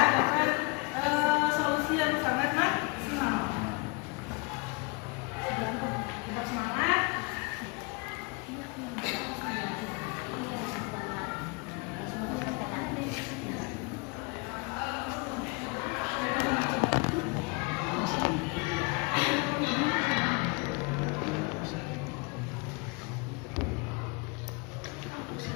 dapat solusi yang sangat maksimal. Tetap semangat.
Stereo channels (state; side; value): quieter; right; 30.3 dB